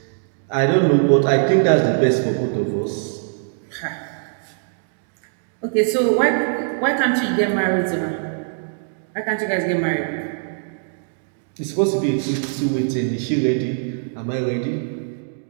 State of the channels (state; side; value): silent; left; digital silence